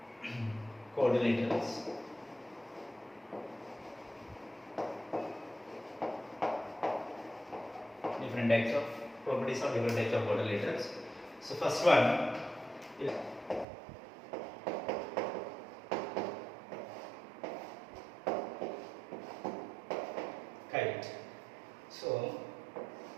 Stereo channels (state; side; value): drops out; left; at 13.7 s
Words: coordinators. Different types of properties of different types of coordinators. So first one is kite. So